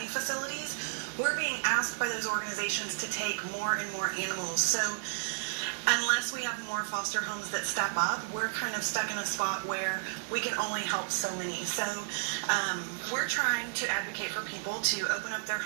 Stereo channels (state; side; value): silent; left; digital silence